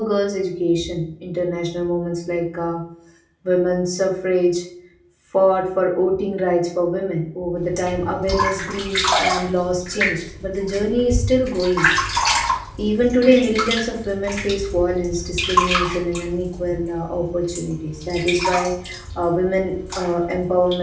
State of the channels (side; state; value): both; identical; correlation 1.00